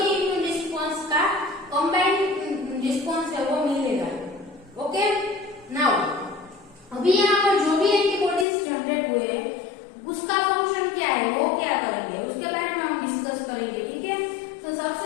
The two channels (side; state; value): right; drops out; at 8.5 s